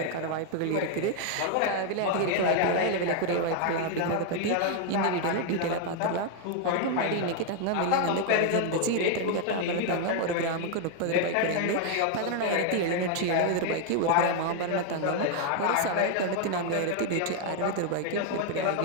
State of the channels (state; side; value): different; both; correlation 0.00